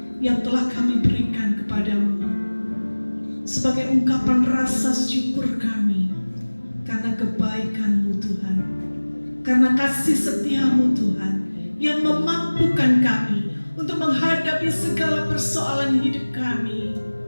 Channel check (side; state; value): both; inverted; correlation -1.00